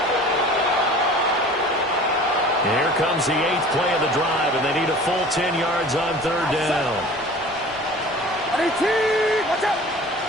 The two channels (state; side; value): noise; left; rumble, 28 dB below the sound